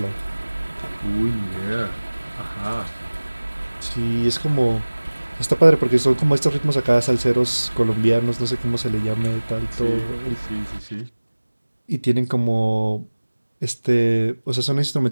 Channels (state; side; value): inverted; both; correlation -1.00